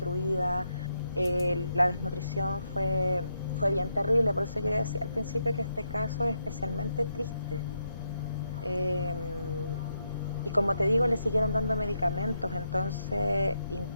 la desnutrición fue bien terrible. Por eso yo decía al principio que este caso es especialmente triste. Y como te digo, le siguieron dando medicamentos. Entonces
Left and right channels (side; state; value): both; inverted; correlation -0.81